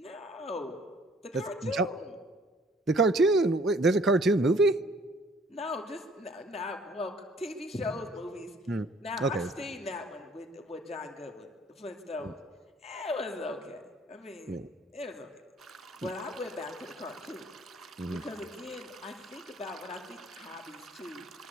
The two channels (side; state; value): both; normal; correlation 0.58